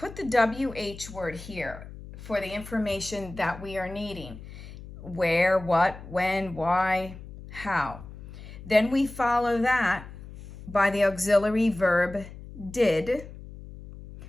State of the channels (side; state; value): left; noise; hum, 15 dB below the sound